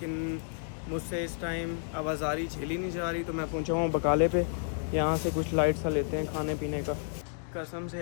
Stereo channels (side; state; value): right; silent; digital silence